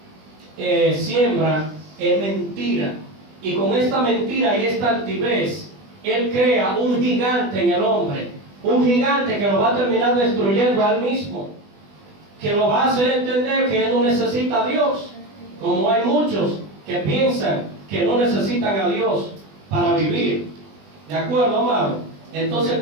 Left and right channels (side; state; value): left; late; 20 ms